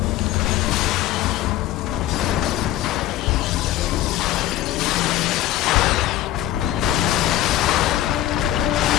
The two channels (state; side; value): quieter; right; 13.8 dB